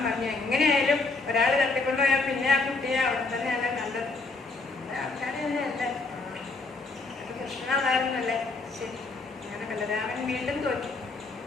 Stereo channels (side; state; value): right; quieter; 3.6 dB